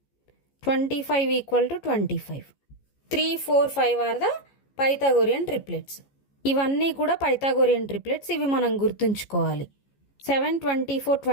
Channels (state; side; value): late; right; 14 ms